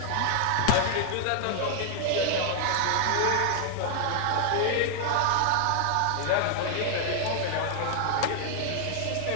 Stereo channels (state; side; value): different; both; correlation 0.00